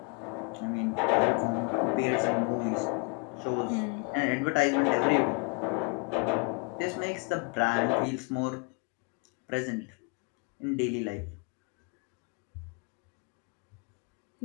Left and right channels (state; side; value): quieter; right; 32.2 dB